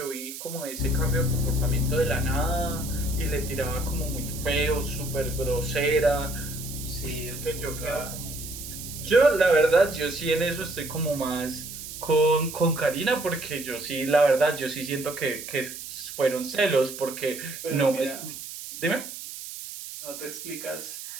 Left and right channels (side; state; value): right; noise; hiss, 10 dB below the sound